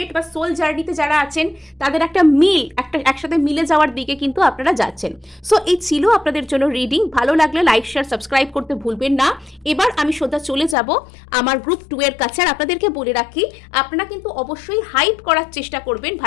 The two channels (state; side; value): drops out; right; at 10.8 s